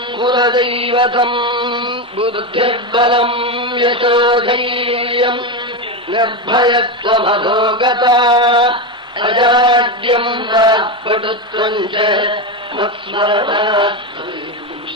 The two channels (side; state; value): both; normal; correlation 0.13